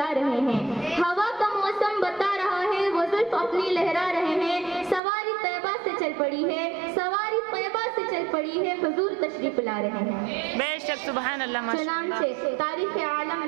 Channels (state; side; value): drops out; left; at 5.0 s